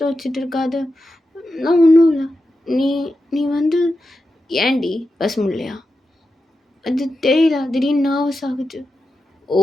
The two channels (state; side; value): normal; both; correlation 0.90